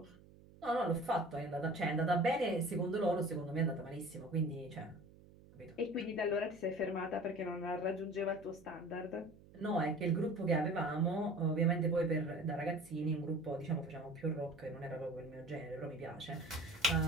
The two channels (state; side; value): noise; right; hum, 22 dB below the sound